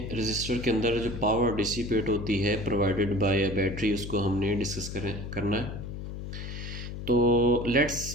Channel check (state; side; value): noise; left; hum, 8 dB below the sound